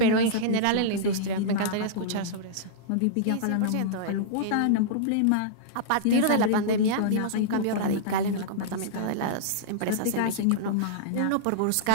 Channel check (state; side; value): different; both; correlation -0.03